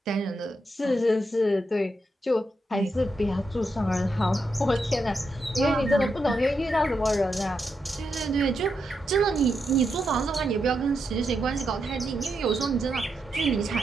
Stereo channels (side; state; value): both; normal; correlation 0.84